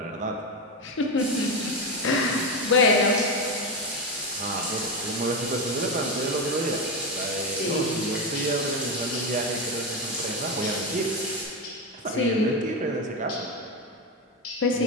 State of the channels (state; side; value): normal; both; correlation 0.12